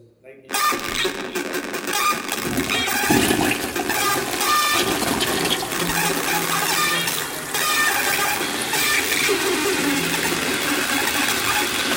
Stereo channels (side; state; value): both; identical; correlation 1.00